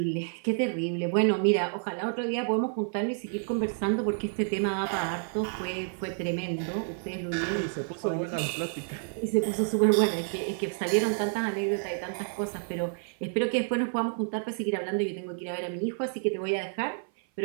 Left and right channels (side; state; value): left; silent; 56 dB below the other